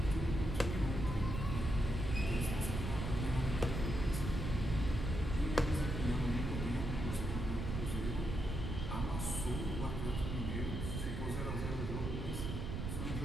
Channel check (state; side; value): noise; right; rumble, 3 dB below the sound